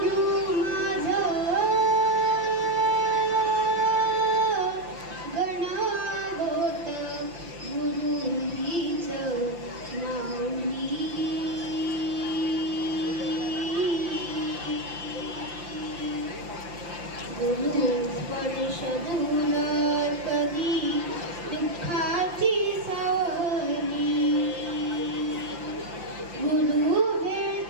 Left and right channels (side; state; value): left; late; 5.8 ms